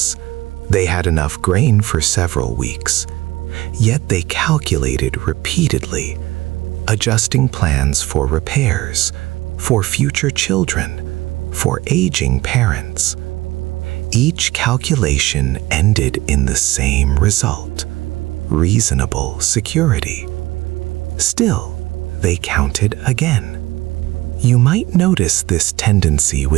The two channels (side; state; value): left; quieter; 18.8 dB